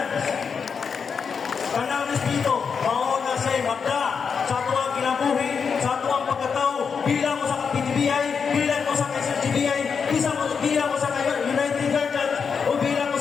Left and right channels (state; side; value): quieter; right; 6.1 dB